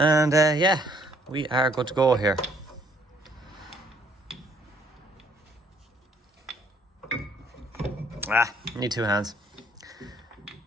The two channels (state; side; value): normal; both; correlation 0.64